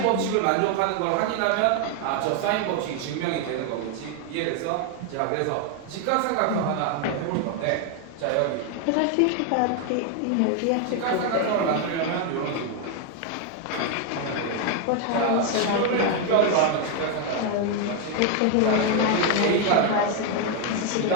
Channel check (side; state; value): both; different; correlation 0.01